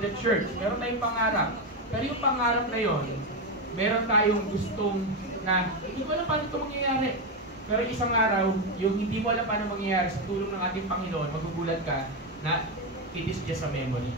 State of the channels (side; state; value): both; normal; correlation 0.10